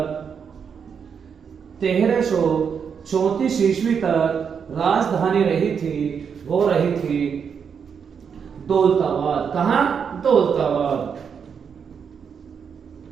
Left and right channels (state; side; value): quieter; left; 6.8 dB